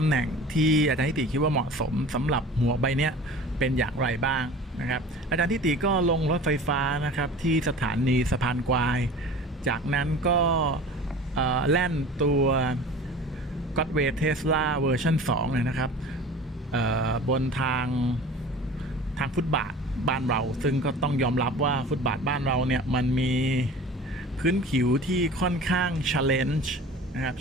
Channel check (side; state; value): both; normal; correlation 0.40